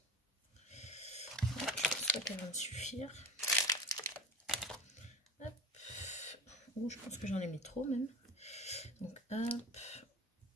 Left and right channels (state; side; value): normal; both; correlation 0.32